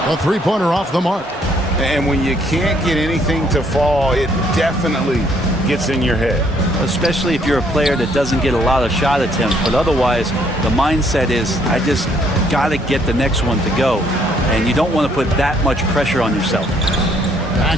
A three-pointer off the mark. And when you can't get anything to fall, it definitely gets in your head. Especially if you're a player that doesn't get a lot of shot attempts, but otherwise the mindset is, I just got to get the next one to go. And you don't want to put that much pressure on yourself.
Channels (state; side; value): normal; both; correlation 0.67